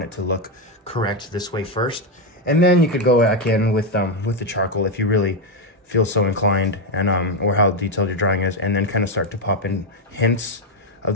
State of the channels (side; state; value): both; normal; correlation 0.06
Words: it to look correct this way first. And then you could go back in with the charcoal if you really feel so inclined, and or how detailed your drawing is, and then kind of start to pop in hints of